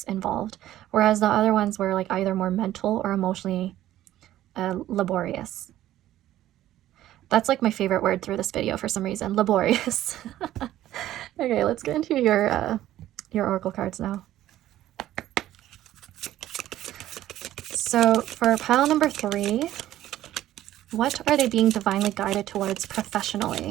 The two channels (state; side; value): quieter; left; 13.6 dB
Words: involved, whereas the other ones were like either more mental or emotionally laborious. That's like my favorite word through this video for some reason, laborious. Okay, let's get into your oracle cards now. So for pile number 3, what are they being divinely guided towards